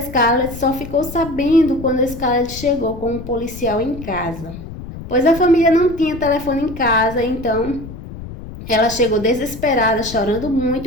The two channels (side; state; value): left; noise; rumble, 12 dB below the sound